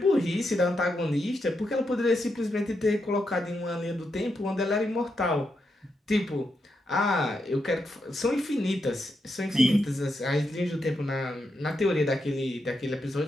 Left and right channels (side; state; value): both; normal; correlation 0.83